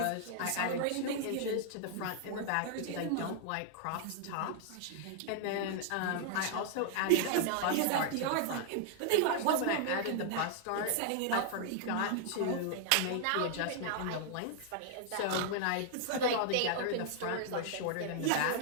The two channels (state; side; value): different; both; correlation -0.01